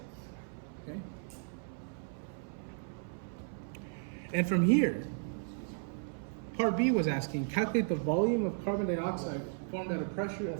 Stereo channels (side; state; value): left; silent; 54 dB below the other